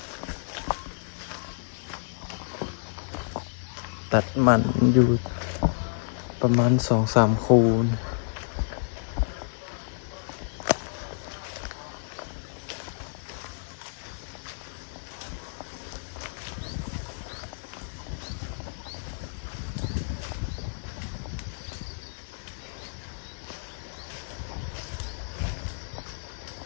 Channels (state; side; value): silent; right; digital silence